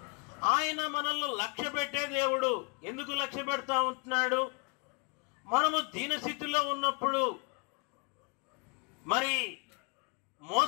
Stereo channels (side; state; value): right; quieter; 32.4 dB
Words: ఆయన మనల్ని లక్ష్య పెట్టే దేవుడు. ఎందుకు లక్ష్య పెడతా ఉంటున్నాడు? మనము దీనస్థితిలో ఉన్నప్పుడు, మరి